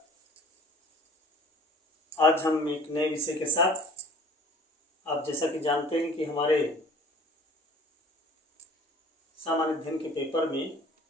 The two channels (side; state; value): both; normal; correlation 0.49